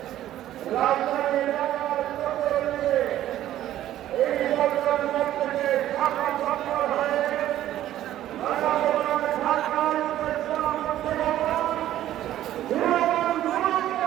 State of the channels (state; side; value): quieter; left; 12.9 dB